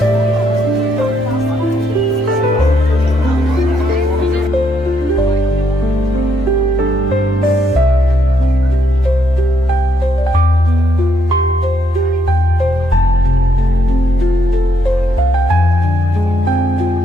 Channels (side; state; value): both; normal; correlation 0.74